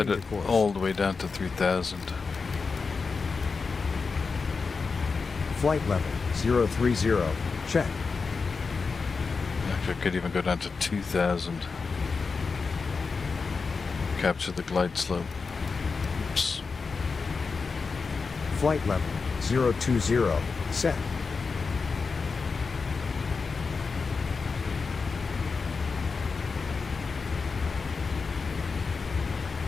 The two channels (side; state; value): right; quieter; 4.7 dB